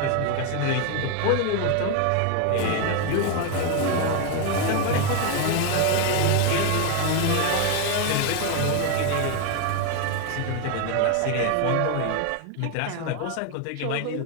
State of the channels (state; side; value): different; both; correlation 0.01